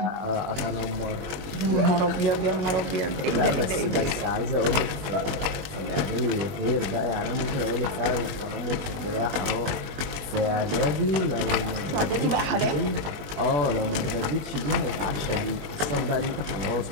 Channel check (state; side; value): late; left; 21 ms